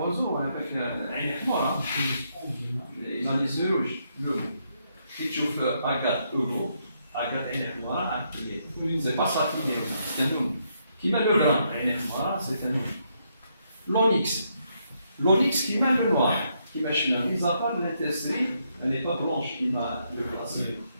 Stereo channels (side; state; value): both; inverted; correlation -0.76